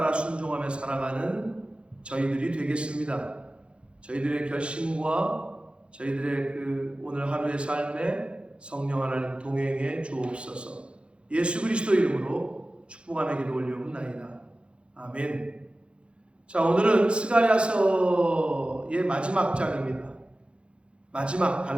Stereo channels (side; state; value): left; late; 0.058 ms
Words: 순종하며 살아가는 저희들이 되겠습니다. 저희들의 결심과 저희들의 그 오늘 하루의 삶에 성령 하나님 동행해 주옵소서. 예수 그리스도 이름으로 축복하며 기도 올려옵나이다. 아멘. 자, 오늘은 스가랴서의 마지막 장입니다. 마지막